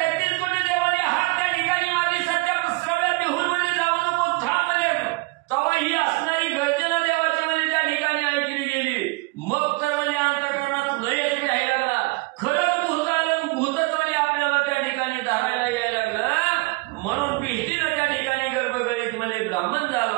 कोटी देवाने हात त्या ठिकाणी मारली. सत्यश्रव्या बिहून म्हणजे जाऊ नको, थांब म्हणजे. तेव्हा ही असणारी गर्जना देवाची म्हणजे त्या ठिकाणी ऐकली गेली. मग तर म्हणजे अंतःकरणात लयच घ्यायला लागला. खरंच भूत आलं, भूतच म्हणजे आपल्याला त्या ठिकाणी धारायला यायला लागलं. म्हणून भीतीनं त्या ठिकाणी गर्भगळीत म्हणजे ब्राह्मण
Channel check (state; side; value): quieter; left; 25.4 dB